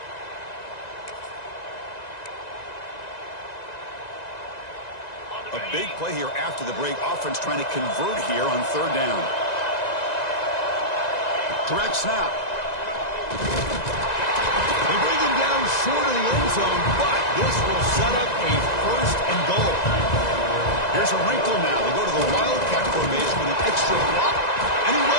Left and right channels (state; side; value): late; right; 2.0 ms